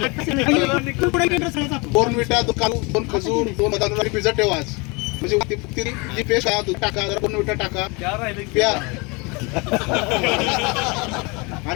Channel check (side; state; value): right; quieter; 28.5 dB